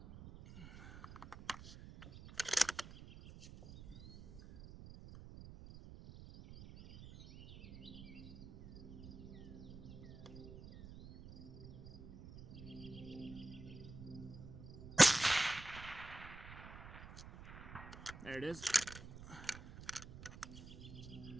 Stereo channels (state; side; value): noise; right; rumble, 14 dB below the sound